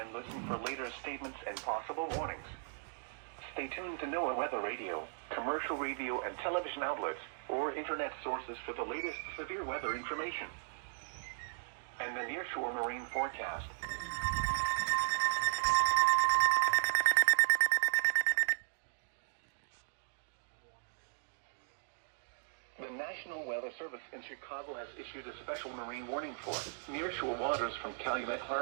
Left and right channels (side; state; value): left; silent; digital silence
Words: listen for later statements and possible warnings. Stay tuned to NOAA Weather Radio, commercial radio and television outlets, or internet sources for the latest severe weather information and the nearshore marine forecast. The National Weather Service in Chicago has issued a special marine warning for nearshore waters from Calumet